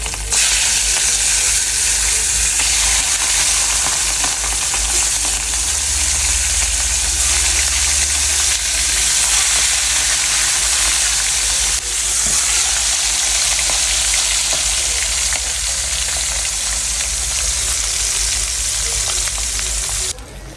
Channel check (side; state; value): both; identical; correlation 1.00